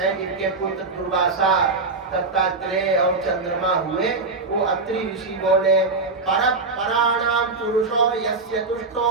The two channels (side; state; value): left; quieter; 3.8 dB